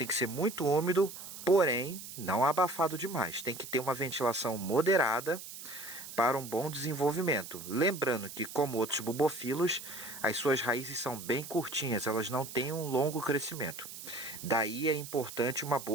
que ser muito úmido, porém não abafado demais. Tem que ter uma ventilação moderada para um bom desenvolvimento. Lembrando que, como outros bubofilos, as suas raízes são bem curtinhas, elas não têm um longo crescimento. Daí é importante uma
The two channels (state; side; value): noise; right; hiss, 12 dB below the sound